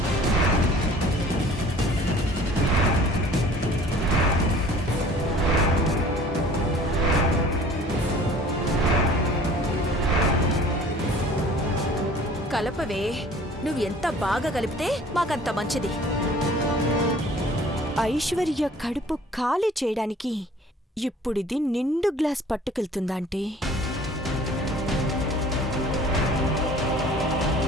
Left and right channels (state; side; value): normal; both; correlation 0.50